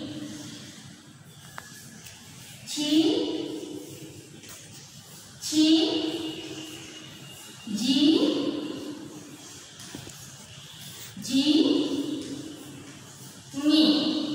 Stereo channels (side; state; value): both; identical; correlation 1.00